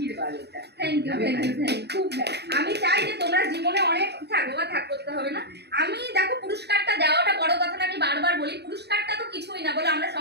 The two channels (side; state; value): left; late; 0.48 ms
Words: এটা থ্যাংক ইউ খুব আমি চাই যে তোমরা জীবনে অনেক থাকো বা থাক করতে হবে না। আমি দেখো পুরস্কারটা দেওয়াটা বড় কথা না, আমি বারবার বলি পুরস্কারটা তো কিছুই না বলে আমরা